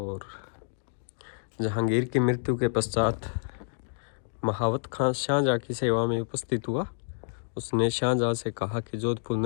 जहांगीर की मृत्यु के पश्चात महावत खां शाहजहां की सेवा में उपस्थित हुआ। उसने शाहजहां से कहा कि जोधपुर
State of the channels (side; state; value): right; silent; digital silence